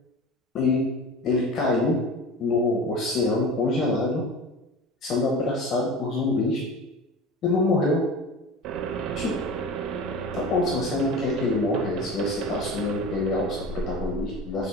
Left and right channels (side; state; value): both; normal; correlation 0.34